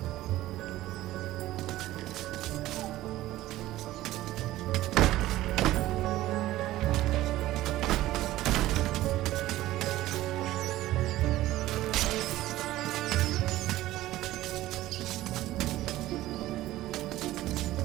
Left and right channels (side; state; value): left; quieter; 15.7 dB